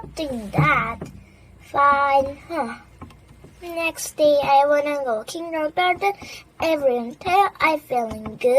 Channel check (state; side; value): identical; both; correlation 1.00